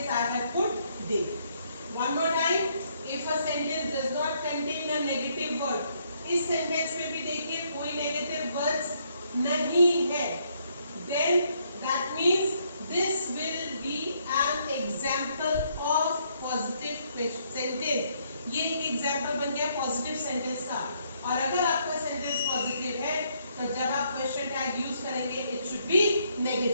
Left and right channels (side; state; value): both; inverted; correlation -0.71